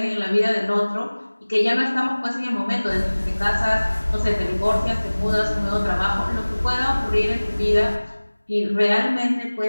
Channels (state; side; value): inverted; both; correlation -1.00